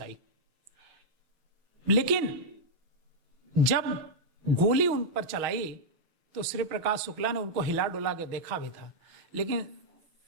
लेकिन जब गोली उन पर चलाई तो श्री प्रकाश शुक्ला ने उनको हिला डुला के देखा भी था, लेकिन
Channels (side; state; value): left; late; 6.2 ms